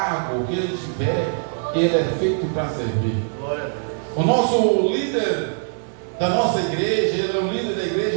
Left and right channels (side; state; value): left; silent; 62 dB below the other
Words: que ele tiver, ele é feito para servir. O nosso líder da nossa igreja, ele é o líder da